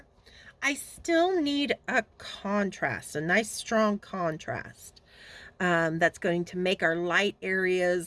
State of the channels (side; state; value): both; identical; correlation 1.00